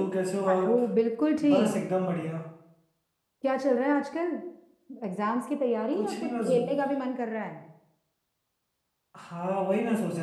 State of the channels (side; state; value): both; identical; correlation 1.00